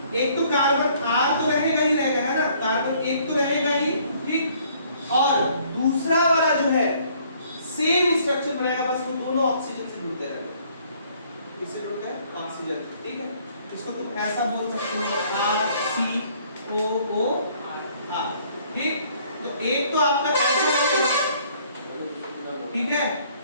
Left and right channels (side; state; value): both; inverted; correlation -0.61